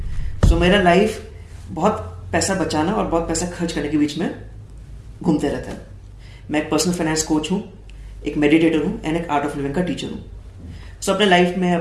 सो मेरा लाइफ बहुत पैसा बचाना और बहुत पैसा खर्च करने के बीच में घूमते रहता है। मैं एक पर्सनल फाइनेंस कोच हूँ, एक मेडिटेटर हूँ एंड एक आर्ट ऑफ लिविंग का टीचर हूँ। सो अपने लाइफ में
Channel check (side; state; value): both; identical; correlation 1.00